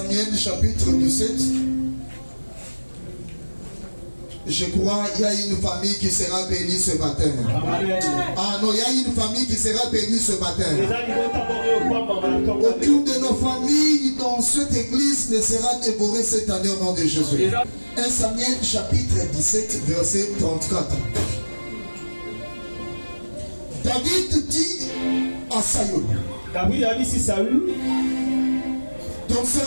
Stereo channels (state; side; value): inverted; both; correlation -1.00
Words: chapitre 17. Je crois qu'il y a une famille qui sera bénie ce matin. Ah non, il y a une famille qui sera bénie ce matin. Aucune de nos familles dans cette église ne sera dévorée cette année au nom de Jésus. 1 Samuel chapitre 17 verset 34. David dit à Saül, ton